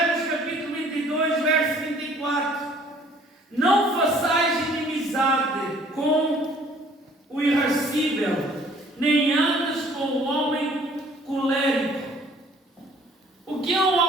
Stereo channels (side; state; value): both; normal; correlation 0.56